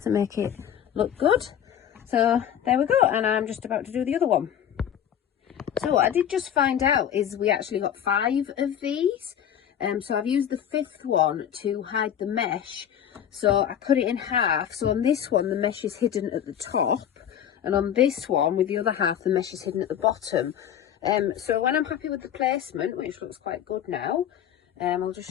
to make it look good. So there we go, and I'm just about to do the other one. So what I did just find out is we actually got 5 of these. So I've used the 5th one to hide the mesh. So I cut it in half. So on this one, the mesh is hidden at the top. And on this one, with the other half, the mesh is hidden at the bottom. So when I'm happy with the placement, which looks quite good now, I'll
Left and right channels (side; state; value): right; quieter; 9.6 dB